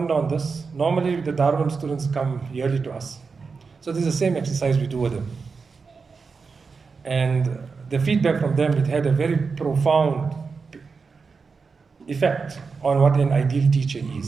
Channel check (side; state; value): left; quieter; 4.9 dB